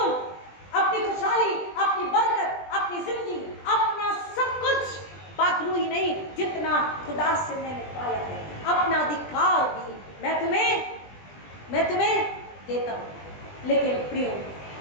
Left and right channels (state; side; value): late; right; 20 ms